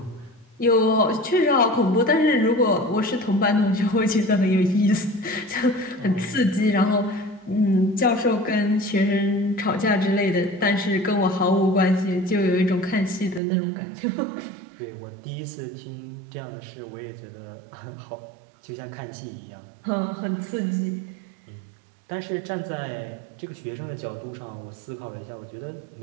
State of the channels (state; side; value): drops out; left; at 13.4 s